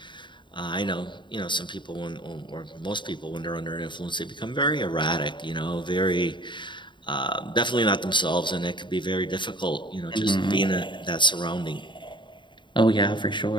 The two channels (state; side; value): late; right; 0.23 ms